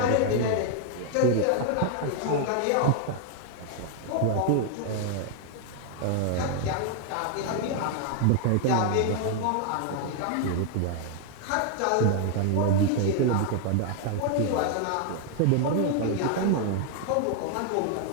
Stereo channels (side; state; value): both; different; correlation 0.00